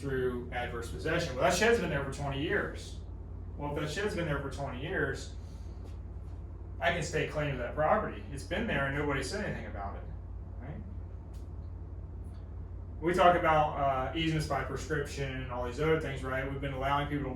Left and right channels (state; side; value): identical; both; correlation 1.00